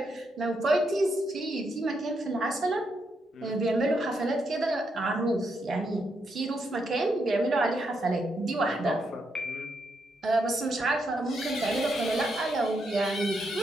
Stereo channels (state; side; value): normal; both; correlation 0.80